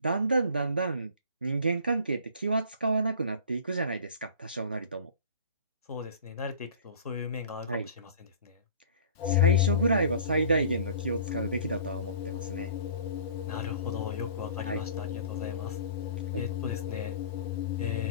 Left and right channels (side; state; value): both; inverted; correlation -0.44